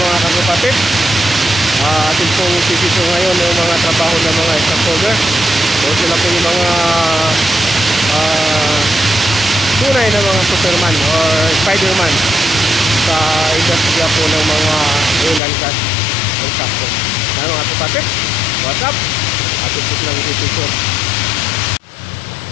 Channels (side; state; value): right; drops out; at 15.4 s